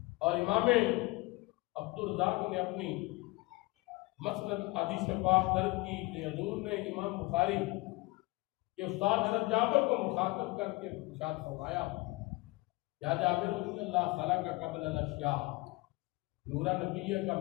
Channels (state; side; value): quieter; right; 23.2 dB